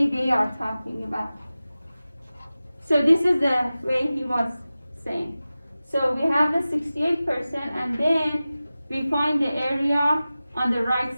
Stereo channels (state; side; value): inverted; both; correlation -0.96